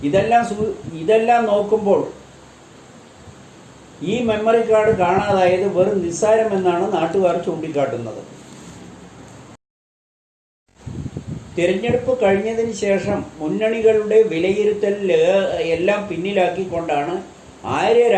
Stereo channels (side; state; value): both; identical; correlation 1.00